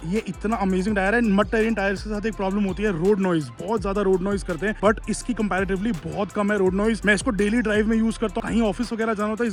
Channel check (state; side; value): identical; both; correlation 1.00